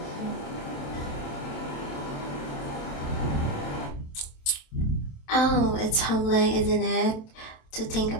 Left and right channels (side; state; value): right; late; 27 ms